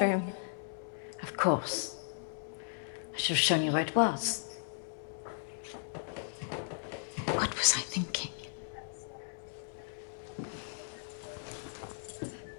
Of course. I should have shown you where it was. What was I thinking?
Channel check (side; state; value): right; silent; digital silence